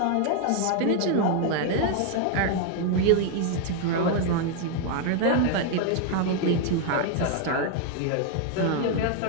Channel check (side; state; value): both; different; correlation 0.00